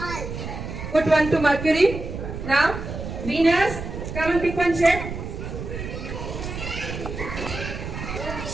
Put 1 to Mercury. Now Venus. Come and pick one shade.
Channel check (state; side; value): noise; right; rumble, 7 dB below the sound